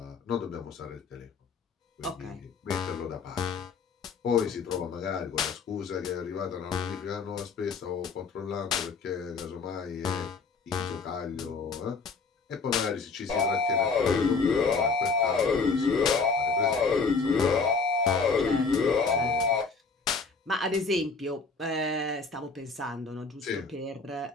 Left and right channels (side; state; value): right; quieter; 4.6 dB